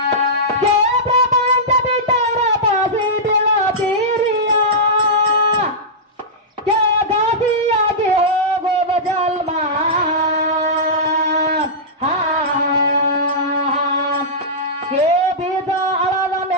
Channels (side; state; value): both; normal; correlation -0.13